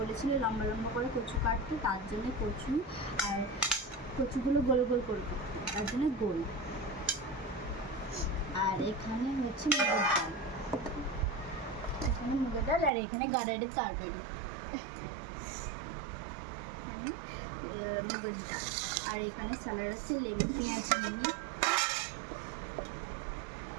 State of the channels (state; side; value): drops out; left; at 12.9 s